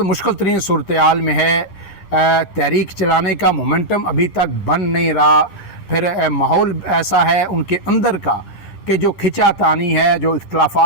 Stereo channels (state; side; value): late; right; 10 ms